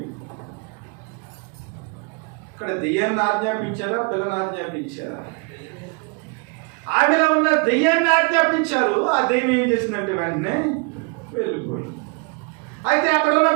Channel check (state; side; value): quieter; left; 32.0 dB